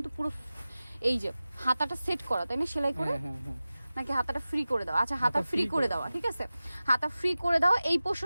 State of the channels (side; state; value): both; inverted; correlation -0.96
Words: পুরো এই যে হাতাটা সেট করা, তাই না? সেলাই করে নাকি হাতাটা ফ্রি করে দাও? আচ্ছা হাতা ফ্রি করে দেওয়া, ঠিক আছে। হাতা ফ্রি করে দেওয়া, এই